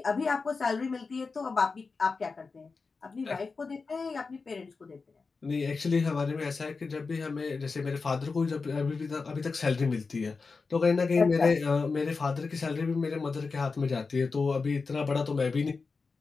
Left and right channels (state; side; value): quieter; right; 4.5 dB